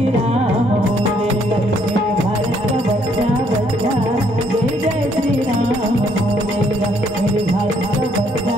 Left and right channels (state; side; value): normal; both; correlation 0.68